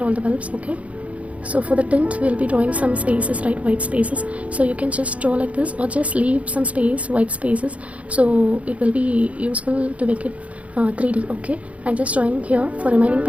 all the bulbs. Okay, so for the tint we'll be drawing some spaces, right, white spaces. So you can just draw like this or just leave some space, white spaces, so it will be useful to make it 3D. Okay, I'm just drawing here. For remaining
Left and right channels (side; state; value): left; late; 0.065 ms